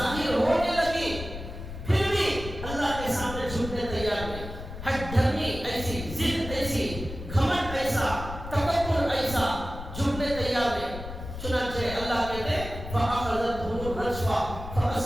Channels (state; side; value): noise; left; rumble, 10 dB below the sound